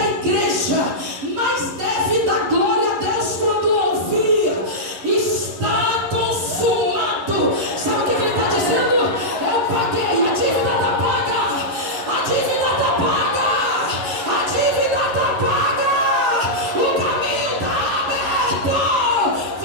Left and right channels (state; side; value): late; left; 11 ms